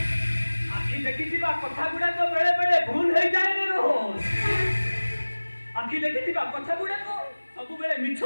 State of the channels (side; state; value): both; inverted; correlation -1.00